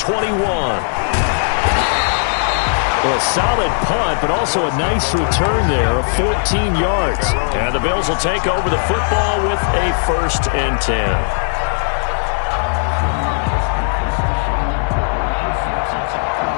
Well, a solid punt, but also a nice return there of 14 yards. And the Bills will take over the football with a 1st and 10.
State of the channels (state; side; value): silent; right; digital silence